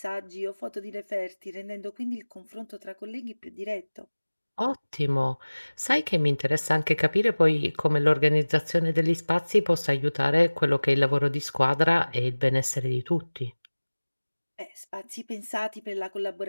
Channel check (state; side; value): inverted; both; correlation -1.00